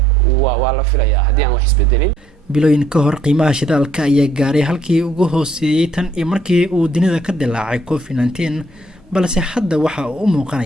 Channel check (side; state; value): both; normal; correlation 0.66